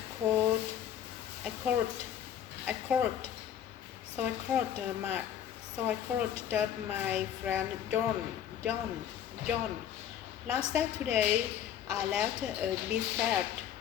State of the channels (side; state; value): right; quieter; 9.9 dB